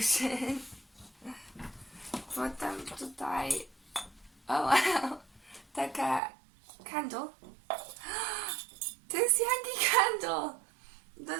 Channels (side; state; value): left; drops out; at 6.2 s